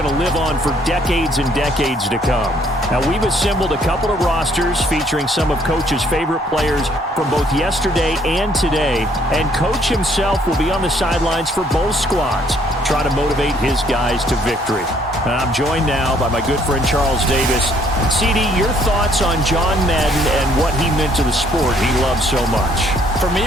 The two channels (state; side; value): normal; both; correlation 0.64